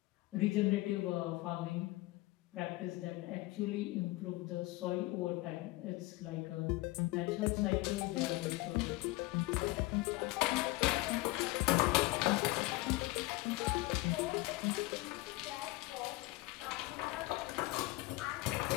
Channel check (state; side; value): quieter; right; 20.5 dB